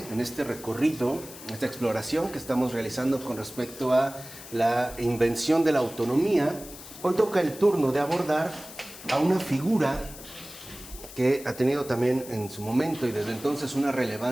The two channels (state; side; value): noise; left; hiss, 15 dB below the sound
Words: en este recorrido, esta exploración que estamos realizando con respecto a la invención de la autonomía, hoy toca el turno de abordar a una figura que ha tenido también en su momento y desde entonces una